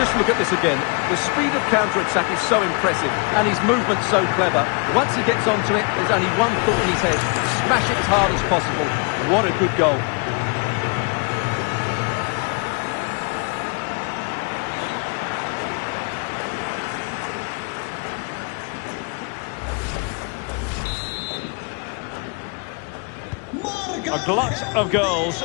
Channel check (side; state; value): right; quieter; 34.3 dB